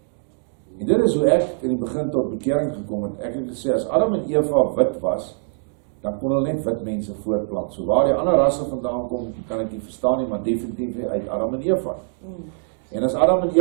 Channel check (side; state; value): left; silent; digital silence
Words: En dit is hoe ek in die begin tot bekering gekom het. Ek het gesê, as Adam en Eva wit was, dan kon hulle net wit mense voortplant. So waar die ander rasse vandaan kom, kan ek nie verstaan nie, maar definitief uit Adam en Eva. En as Adam en